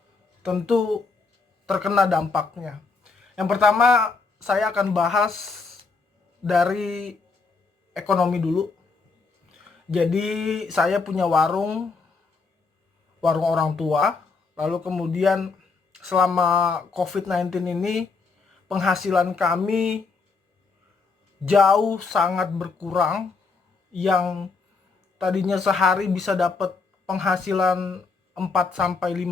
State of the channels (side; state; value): right; quieter; 4.5 dB